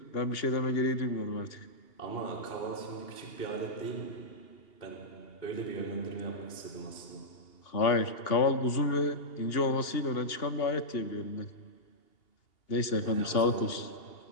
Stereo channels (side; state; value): right; late; 2.8 ms